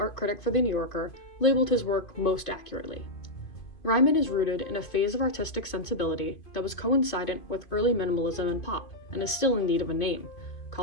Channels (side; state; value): right; late; 2.5 ms